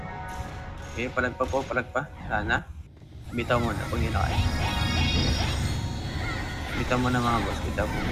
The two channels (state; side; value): identical; both; correlation 1.00